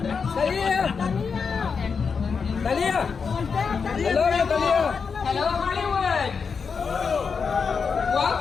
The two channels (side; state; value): right; quieter; 5.6 dB